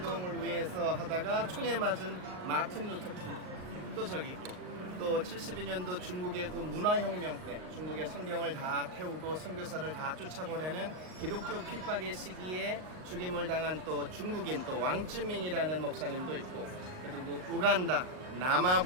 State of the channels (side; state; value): left; late; 38 ms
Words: 위해서 하다가 총에 맞은 마틴 루터 킹도 저기 있고, 또 72년도 중국의 그 문화혁명 때 중국의 성경을 다 태우고 선교사를 다 쫓아보내는 기독교 핍박의 시기에 죽임을 당한 또 중국인 또 왕쯔민이라는 목사님도 있고, 그리고 우간다,